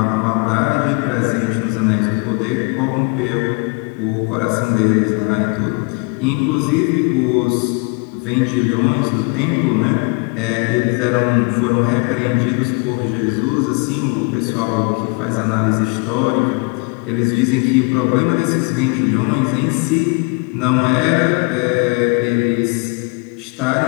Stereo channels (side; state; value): right; quieter; 31.5 dB